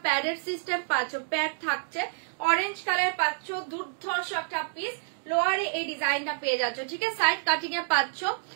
প্যাডের সিস্টেম পাচ্ছ, প্যাড থাকছে, অরেঞ্জ কালার পাচ্ছ, দুর্ধর্ষ একটা পিস। লোয়ারে এই ডিজাইনটা পেয়ে যাচ্ছ, ঠিক আছে, সাইড কাটিং এ পাচ্ছ,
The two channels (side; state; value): left; silent; digital silence